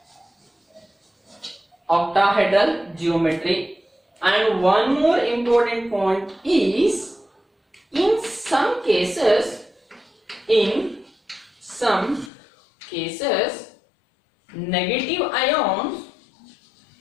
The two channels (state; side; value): drops out; right; at 12.3 s